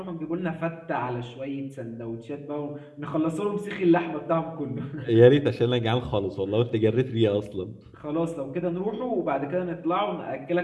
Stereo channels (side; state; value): both; identical; correlation 1.00